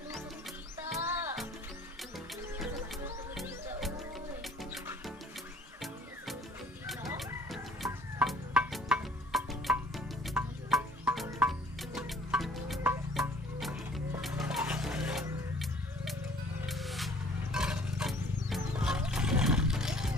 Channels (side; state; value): both; normal; correlation 0.54